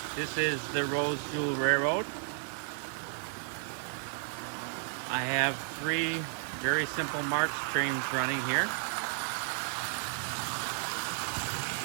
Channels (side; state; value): left; silent; digital silence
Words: this is the Rose Jewel Railroad. I have three very simple Marx trains running here.